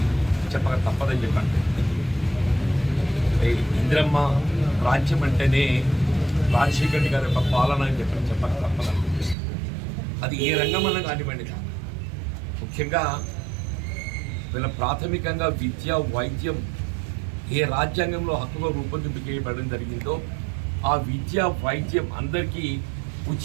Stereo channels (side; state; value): left; drops out; at 9.3 s